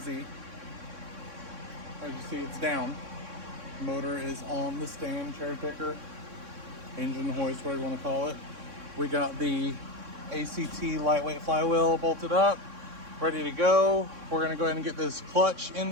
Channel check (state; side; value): late; left; 3.6 ms